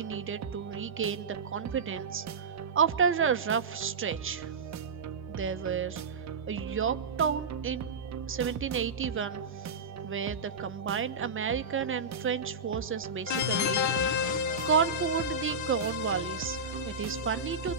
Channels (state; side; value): quieter; left; 3.8 dB